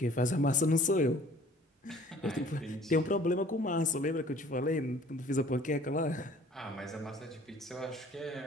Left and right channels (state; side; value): normal; both; correlation 0.52